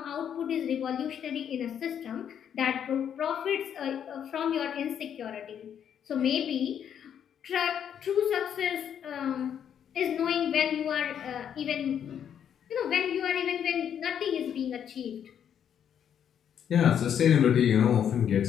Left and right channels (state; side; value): quieter; right; 8.8 dB